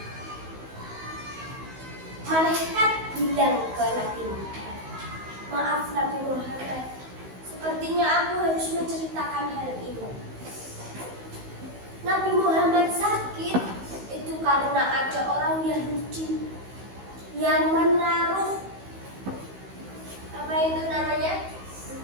malaikat bilang ke Nabi Muhammad, maaf Nabi Muhammad, sepertinya aku harus menceritakan hal ini. Nabi Muhammad sakit itu karena ada orang Yahudi yang menaruh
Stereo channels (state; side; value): late; left; 16 ms